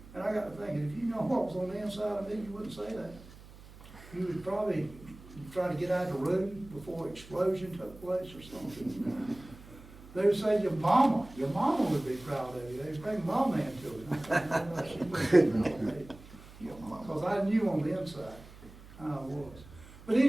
And I got to thinking, if you know what was on the inside of me, you wouldn't say that. You would probably try to get out of the room before explosion took place or something. They would say, your mama would be proud of you. They'd bring mama into it. She wouldn't be proud of me. Because I knew on the inside how I was. But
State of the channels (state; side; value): noise; right; hum, 19 dB below the sound